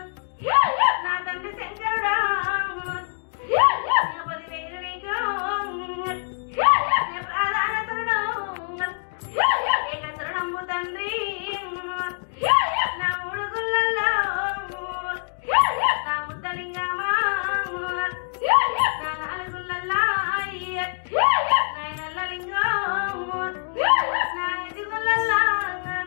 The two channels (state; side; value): silent; right; digital silence